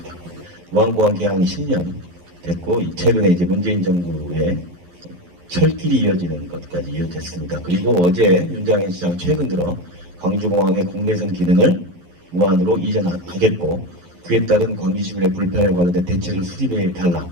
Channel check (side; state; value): left; late; 11 ms